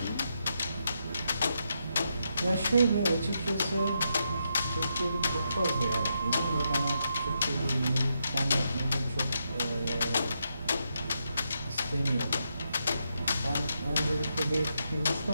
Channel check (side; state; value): both; inverted; correlation -0.82